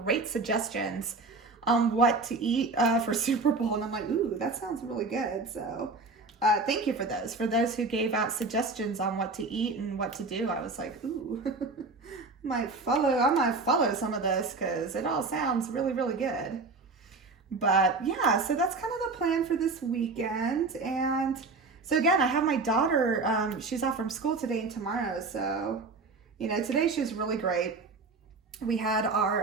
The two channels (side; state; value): left; quieter; 3.8 dB